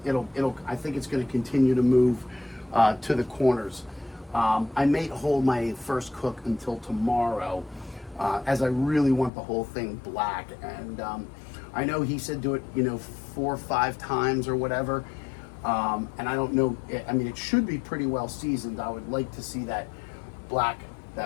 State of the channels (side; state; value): right; drops out; at 9.3 s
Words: I think it's gonna continue to move to the corners. I may hold my first cook until tomorrow, as I really want the whole thing black. And I know he said do it, 4 or 5 times or whatever. And I don't know. I mean, it should be pretty well seasoned. I would like to see that black